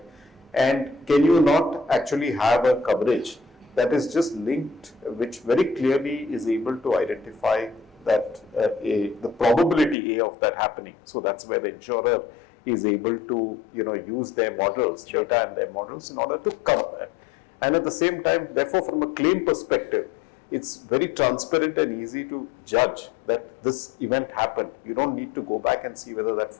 And can you not actually have a coverage that is just linked, which very clearly is able to identify that the probability of that happening. So that's where the insurer is able to, use their models, data and their models in order to cover that. And at the same time, therefore, from a claim perspective, it's very transparent and easy to judge that this event happened. You don't need to go back and see whether that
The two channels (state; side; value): drops out; right; at 10.0 s